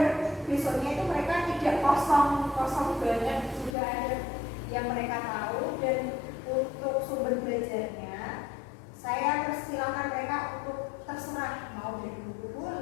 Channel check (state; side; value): drops out; right; at 3.8 s